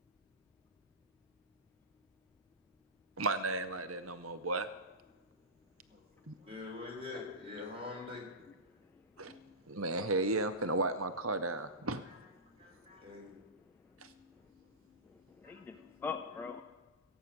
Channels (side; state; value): both; normal; correlation -0.17